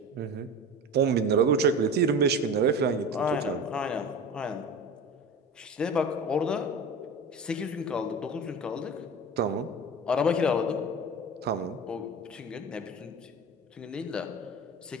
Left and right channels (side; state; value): both; normal; correlation 0.32